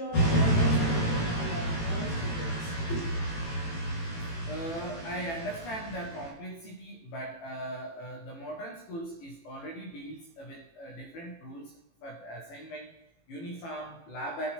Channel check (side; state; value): right; late; 18 ms